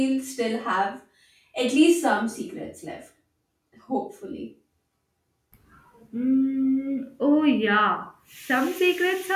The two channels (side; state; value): both; identical; correlation 1.00